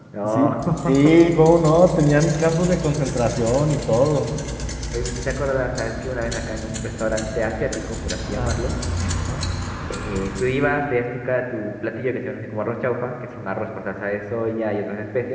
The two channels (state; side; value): identical; both; correlation 1.00